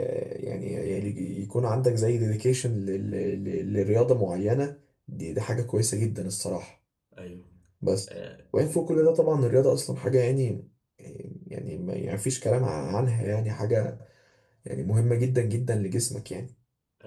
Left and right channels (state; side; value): identical; both; correlation 1.00